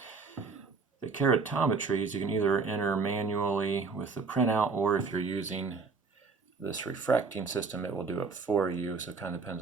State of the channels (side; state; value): left; quieter; 4.6 dB